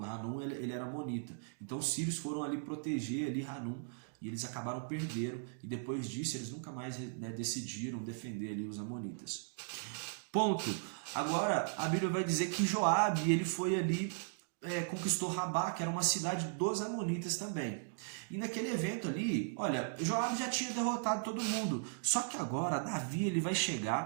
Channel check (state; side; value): silent; left; digital silence